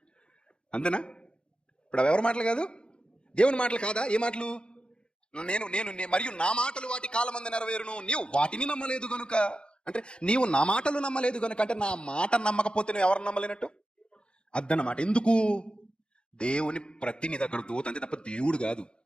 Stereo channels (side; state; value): right; late; 0.053 ms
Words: అంతేనా? ఇప్పుడు అవి ఎవరి మాటలు కాదు, దేవుని మాటలు కాదా? ఏ మాటలు? నేను మరియు నా మాటలు వాటి కాలమందు నెరవేరును, నీవు వాటిని నమ్మలేదు గనుక. అంటే నీవు నా మాటలు నమ్మలేదు గనుక, అంటే నా మాట నమ్మకపోతే నువ్వు ఎవరు నమ్మలేనట్టు అద్దన్నమాట. ఎందుకు? దేవుని ప్రతినిధి అక్కడ దూత అంతే తప్ప దేవుడు కాదు.